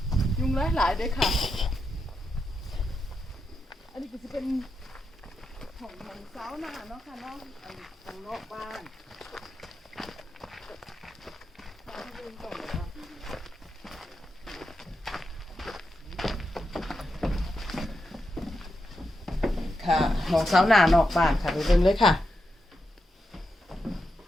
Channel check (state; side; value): normal; both; correlation 0.86